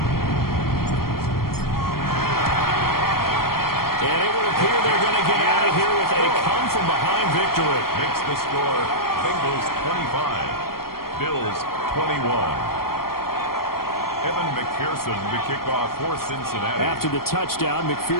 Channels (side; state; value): right; late; 0.93 ms